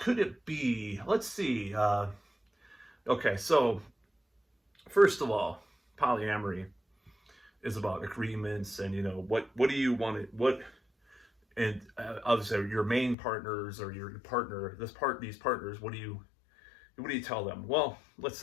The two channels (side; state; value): right; drops out; at 13.2 s